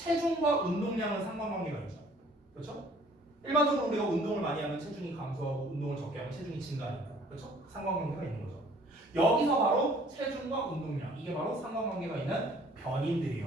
운동량은 상관관계가 있죠. 그렇죠? 일반적으로 우리가 운동을 많이 하면 체중이 감소하고 운동을 적게 하면 체중이 증가하니까. 그렇죠? 상관관계가 있는 거죠. 여기서 바로 체중과 운동량 이게 바로 상관관계가 있는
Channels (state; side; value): normal; both; correlation 0.56